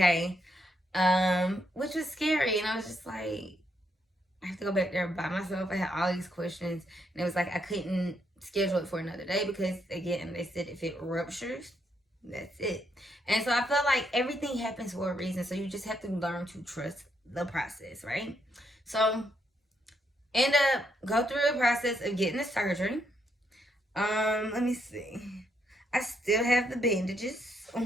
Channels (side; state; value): both; normal; correlation 0.76